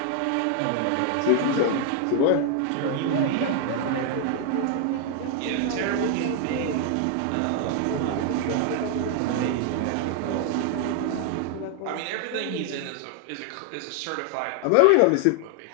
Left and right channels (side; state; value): both; different; correlation 0.00